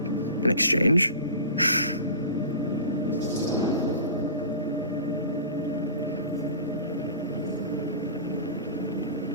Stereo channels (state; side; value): inverted; both; correlation -0.36